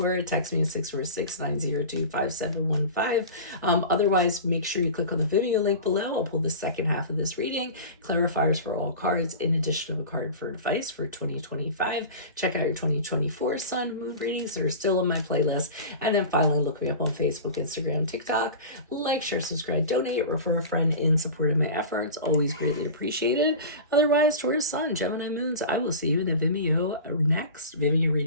text me at 646-902-5715. Otherwise, make sure you click on the Vimeo link below. I'll pull the second half of this reading, clarifiers for all cards, in addition to a card for advice for 2025. Check out your 2024 Sun Moon readings that are still on my playlist. And then finally, look me up on Facebook, Instagram, TikTok. Like, share, subscribe, donate, refer a friend in support of my efforts. Always greatly appreciated. Otherwise, Taurus Sun, Gemini Moons, I will see you in the Vimeo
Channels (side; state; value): both; inverted; correlation -0.33